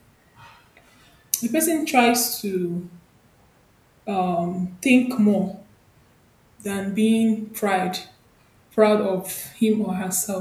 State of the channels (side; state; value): both; identical; correlation 1.00